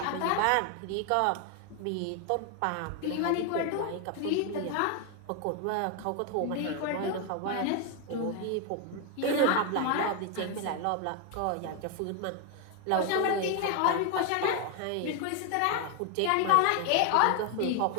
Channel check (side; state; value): both; different; correlation 0.01